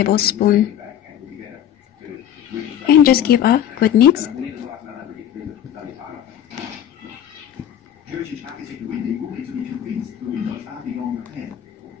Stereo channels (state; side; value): quieter; right; 10.4 dB